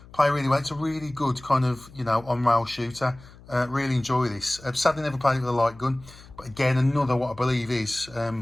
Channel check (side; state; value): left; noise; hum, 21 dB below the sound